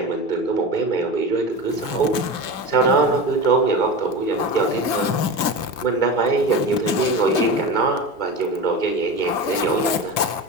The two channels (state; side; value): late; right; 2.3 ms